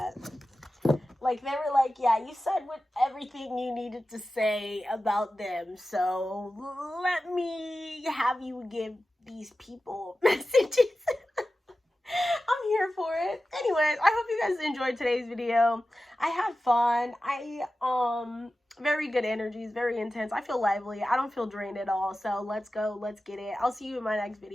Like, they were like, yeah, you said with everything you needed to say about them. So, let me have you give these people messages. I'm here for it. Anyways, I hope you guys enjoyed today's video. I had fun. Very good energies, very intense. I feel lively. I don't feel drained at all. So let's go. Let's get it. I'll see you in my next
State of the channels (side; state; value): both; normal; correlation 0.94